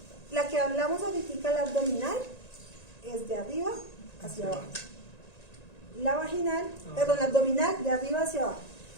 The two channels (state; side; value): late; right; 1.9 ms